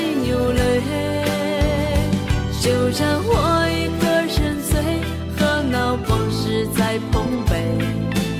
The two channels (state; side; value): identical; both; correlation 1.00